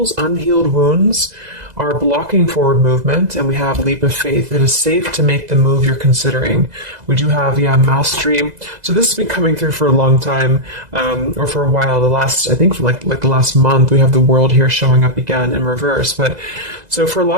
unhealed wounds are blocking forward movement, and we have leap of faith. It is safe to make the move you're considering. We do have, mastery. So this has been coming through for a long time, or for a while. I think for like the last month, we have the world here showing up again in reverse. But so for a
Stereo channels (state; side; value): late; left; 2.0 ms